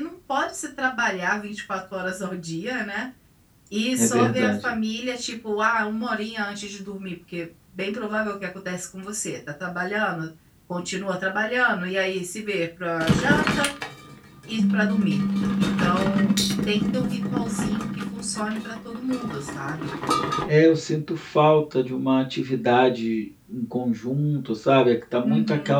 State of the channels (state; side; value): identical; both; correlation 1.00